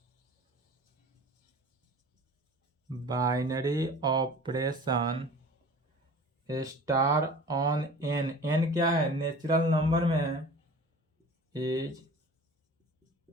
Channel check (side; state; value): both; normal; correlation 0.42